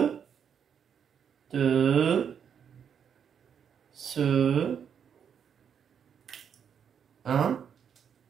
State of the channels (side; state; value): left; quieter; 7.8 dB